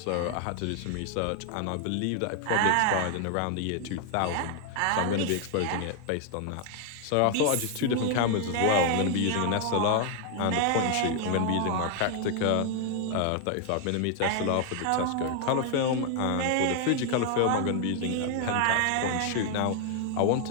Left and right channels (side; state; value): both; different; correlation 0.00